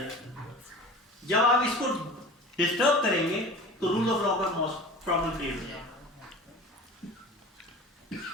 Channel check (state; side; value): normal; both; correlation 0.38